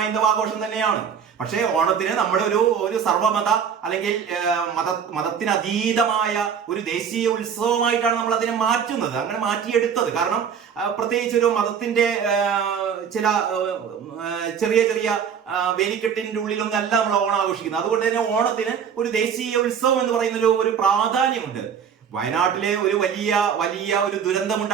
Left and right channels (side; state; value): left; quieter; 7.4 dB